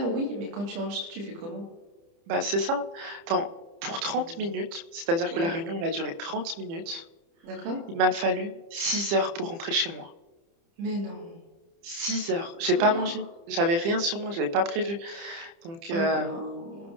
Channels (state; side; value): late; left; 30 ms